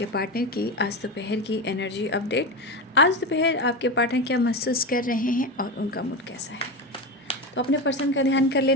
पार्टनर की आज दोपहर की एनर्जी अपडेट। आज दोपहर आपके पार्टनर क्या महसूस कर रहे हैं और उनका मूड कैसा है, तो अपने पर्सन का ध्यान कर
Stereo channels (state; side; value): normal; both; correlation 0.19